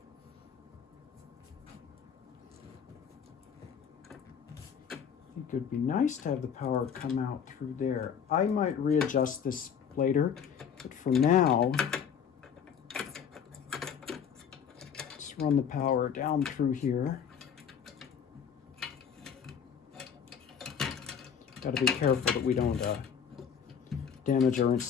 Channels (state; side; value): quieter; right; 7.5 dB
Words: I think it would be nice to have the power come out through there. I might readjust this later, but for now, let's run the power down through here. Got to be careful that we don't damage our